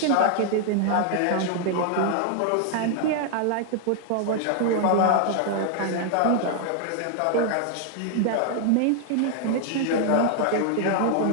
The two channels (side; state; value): both; different; correlation 0.00